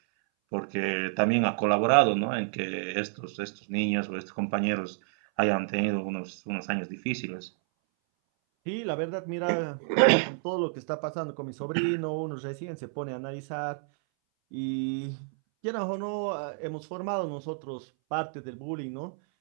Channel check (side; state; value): left; silent; 58 dB below the other